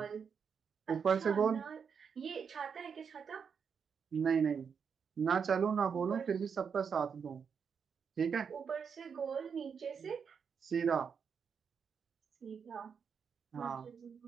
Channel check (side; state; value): left; quieter; 6.5 dB